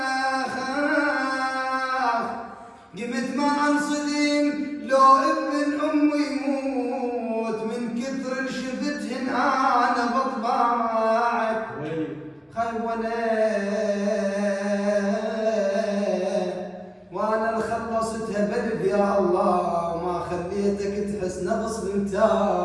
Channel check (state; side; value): identical; both; correlation 1.00